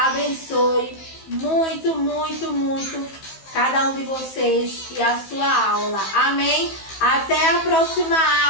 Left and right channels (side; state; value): right; late; 15 ms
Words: muito, muito, muito cada um de vocês e a sua aula. Amém? Até a próxima